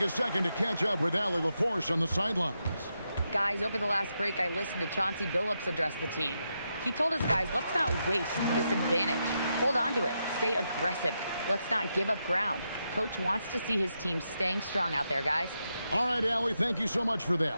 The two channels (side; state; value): both; inverted; correlation -0.84